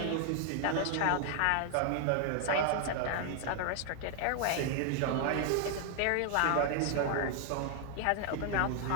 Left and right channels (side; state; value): both; different; correlation 0.00